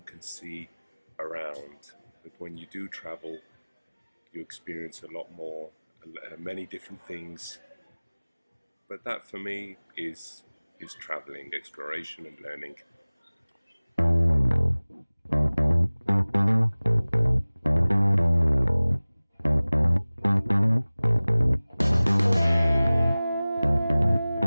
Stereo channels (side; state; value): both; inverted; correlation -0.99